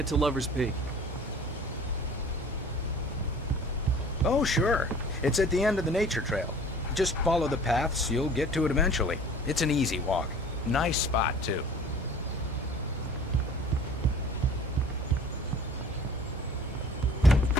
to Lover's Peak? Oh, sure. It's at the end of the nature trail. Just follow the paths, you'll get to it eventually. It's an easy walk. Nice spot, too.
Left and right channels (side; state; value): both; normal; correlation 0.47